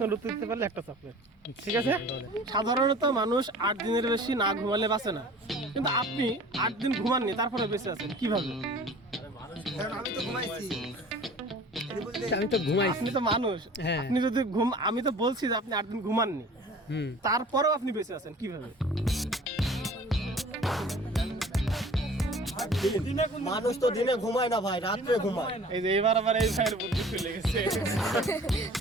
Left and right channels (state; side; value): normal; both; correlation 0.46